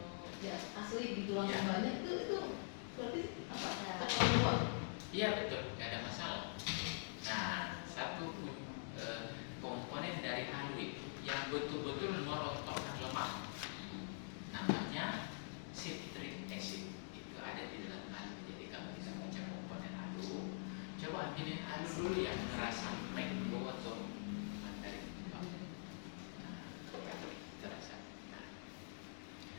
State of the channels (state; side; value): silent; right; digital silence